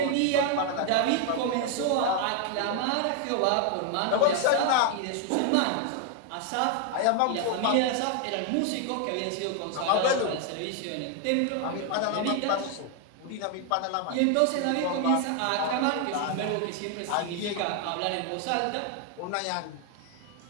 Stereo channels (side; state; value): both; different; correlation 0.00